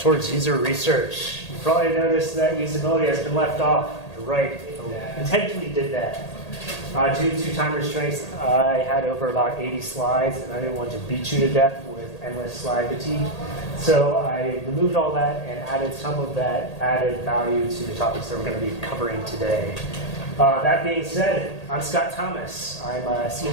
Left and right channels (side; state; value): right; late; 1.8 ms